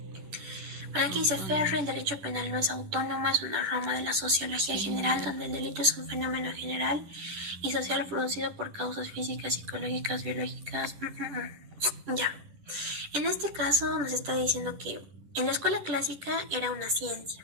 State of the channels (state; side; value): late; left; 10 ms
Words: Bueno, aquí dice Ferri, el derecho penal no es autónomo, es una rama de la sociología general donde el delito es un fenómeno general y social producido por causas físicas, psicológicas, biológicas. Ya. En este caso nos está diciendo que en la escuela clásica era una